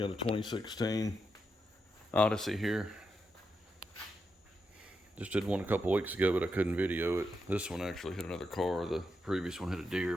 a 2016 Odyssey here. Just did one a couple weeks ago, but I couldn't video it. This one actually hit another car. The previous one hit a deer,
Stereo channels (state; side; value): normal; both; correlation 0.85